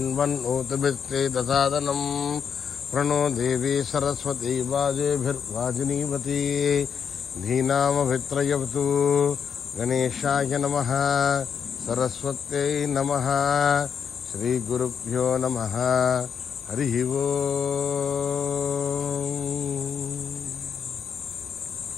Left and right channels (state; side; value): quieter; right; 7.2 dB